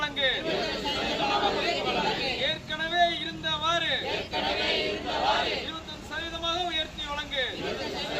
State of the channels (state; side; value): identical; both; correlation 1.00